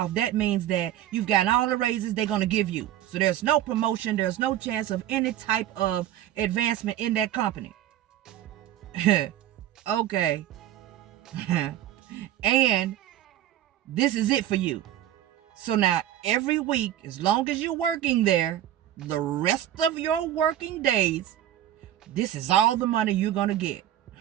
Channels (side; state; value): left; quieter; 12.2 dB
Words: That means that you've gotten all the raises they're going to give you. So there's no promotion. There's no chance of any type of advancement in that company. Okay. And this is it for you. So now every week, as long as you're working there, the rest of your working days, this is all the money you're going to get.